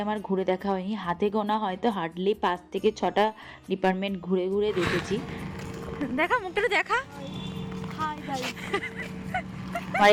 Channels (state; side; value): identical; both; correlation 1.00